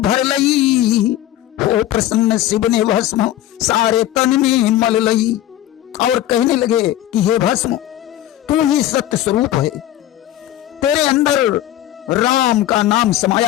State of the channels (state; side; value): quieter; right; 13.2 dB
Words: भर लई, हो प्रसन्न शिव ने भस्म सारे तन में मल लई। और कहने लगे कि हे भस्म, तू ही सत्य स्वरूप है, तेरे अंदर राम का नाम